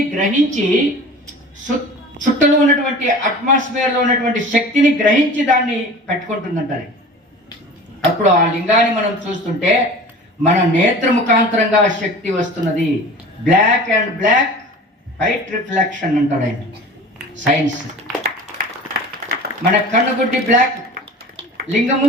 గ్రహించి, చుట్టలో ఉన్నటువంటి అట్మాస్ఫియర్లో ఉన్నటువంటి శక్తిని గ్రహించి దాన్ని పెట్టుకుంటుందంటారు. అప్పుడు ఆ లింగాన్ని మనం చూస్తుంటే మన నేత్ర ముఖాంతరంగా శక్తి వస్తున్నది. Black and black white reflection అంటాడు ఆయన సైన్స్. మన కన్నుగుడ్డి బ్లాక్, లింగము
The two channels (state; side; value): normal; both; correlation 0.40